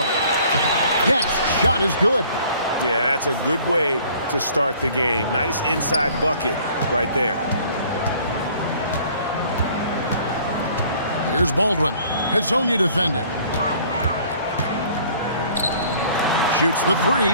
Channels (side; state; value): both; inverted; correlation -0.55